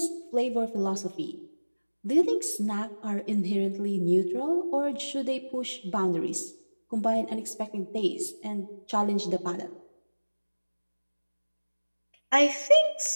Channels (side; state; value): both; inverted; correlation -1.00